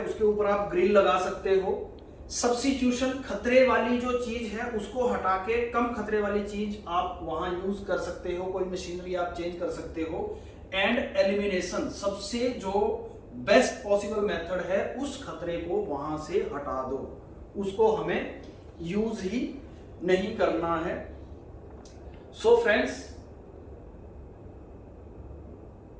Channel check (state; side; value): identical; both; correlation 1.00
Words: ऊपर आप ग्रिल लगा सकते हो। सब्स्टिट्यूशन, खतरे वाली जो चीज है उसको हटा के कम खतरे वाली चीज आप वहां यूज कर सकते हो, कोई मशीनरी आप चेंज कर सकते हो। एंड एलिमिनेशन, सबसे जो बेस्ट पॉसिबल मेथड है उस खतरे को वहां से हटा दो, उसको हमें यूज ही नहीं करना है। सो फ्रेंड्स,